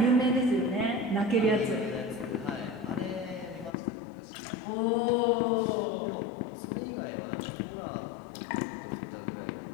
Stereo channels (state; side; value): drops out; right; at 3.7 s